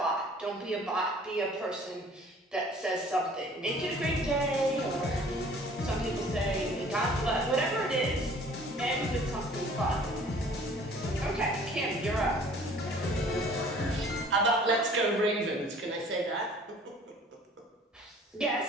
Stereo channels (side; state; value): both; normal; correlation 0.52